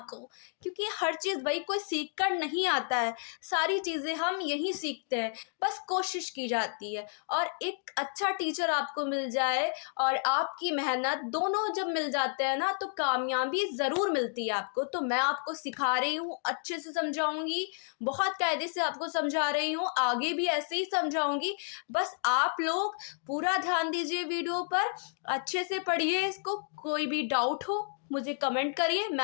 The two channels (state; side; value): silent; right; 57 dB below the other